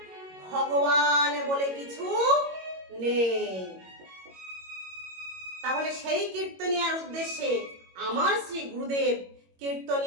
ভগবান বলে কিছু নেই। তাহলে সেই কীর্তনিয়ার উদ্দেশ্যে আমার শ্রী গুরুদেব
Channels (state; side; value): late; left; 22 ms